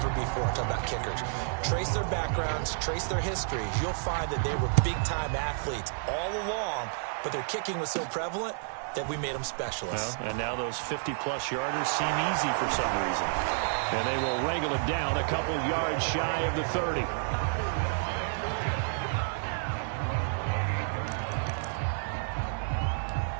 before. I'm talking about kickers. Trace their backgrounds, trace their histories. You'll find that they were big-time athletes all along, but their kicking was so prevalent, that we made them specialists. Well, and now those 50-plus yarders seem easy for some reason. And they will wrangle it down a couple yards shy of the 30.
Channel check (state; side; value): silent; left; digital silence